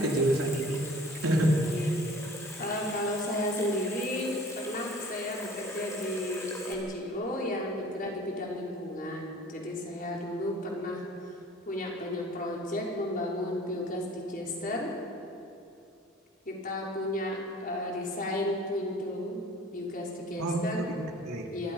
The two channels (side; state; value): both; normal; correlation 0.48